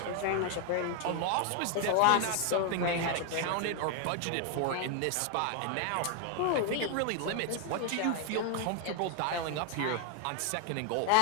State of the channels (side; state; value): both; different; correlation 0.00